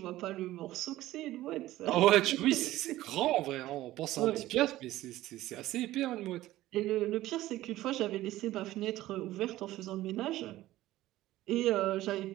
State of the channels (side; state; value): left; quieter; 15.7 dB